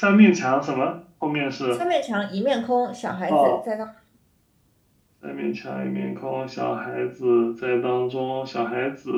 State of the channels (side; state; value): both; identical; correlation 1.00